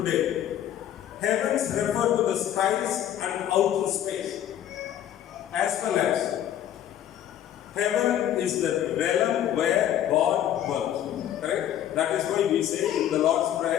heavens refer to the skies and outer space, as well as heaven is the realm where God dwells. Correct? That is why we say in the Lord's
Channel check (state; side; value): quieter; right; 11.1 dB